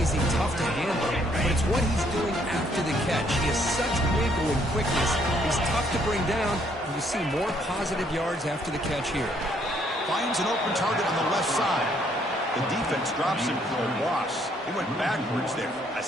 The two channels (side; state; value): both; normal; correlation 0.68